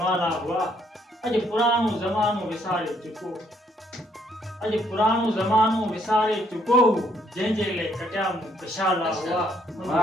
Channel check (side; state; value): both; normal; correlation 0.69